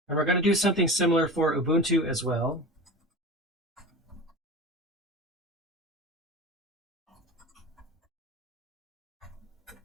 And we're going to do something similar for Ubuntu as well.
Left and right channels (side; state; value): both; normal; correlation 0.31